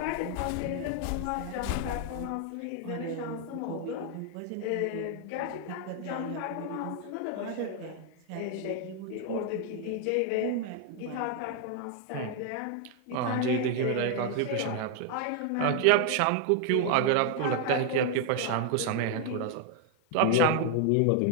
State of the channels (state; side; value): different; both; correlation 0.00